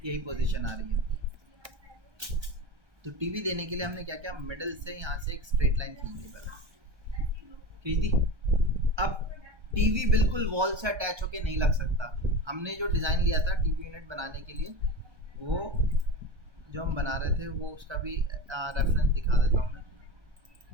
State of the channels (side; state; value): left; late; 1.3 ms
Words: यही पोजीशन आ रही है। तो टीवी देने के लिए हमने क्या किया, मिडल से यहाँ से एक स्ट्रेट लाइन खींच दी, पहले खींच दी। अब टीवी बिल्कुल वॉल से अटैच होके नहीं लग सकता, हमने जो डिज़ाइन लिया था टीवी यूनिट बनाने के लिए, वो जो हम बना रहे थे वो उसका भी रेफरेंस दिखा देता हूँ मैं।